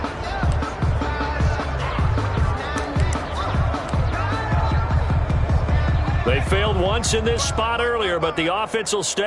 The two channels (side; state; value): both; identical; correlation 1.00